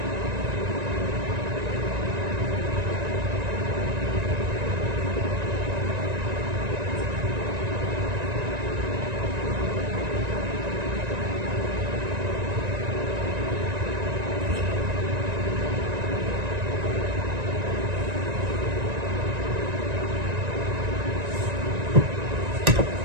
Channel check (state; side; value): late; left; 1.9 ms